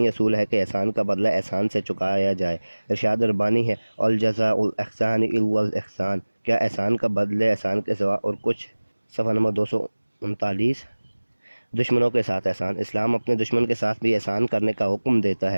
اصول ہے کہ احسان کا بدلہ احسان سے چکایا جائے۔ ارشاد ربانی ہے، الجزاء الاحسان الا الاحسان، کیا احسان کا بدلے احسان کے سوا اور کچھ؟ صفحہ نمبر 239، دشمنوں کے ساتھ احسان۔ اسلام اپنے دشمن کے ساتھ بھی احسان کرنے کا حکم دیتا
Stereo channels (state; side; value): inverted; both; correlation -1.00